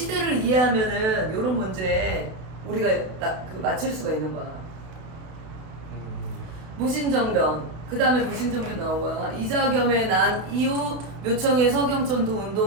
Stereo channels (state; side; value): late; left; 32 ms